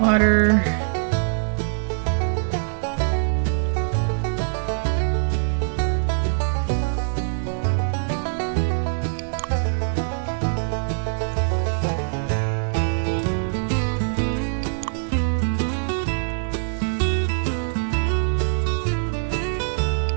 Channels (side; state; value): left; silent; 63 dB below the other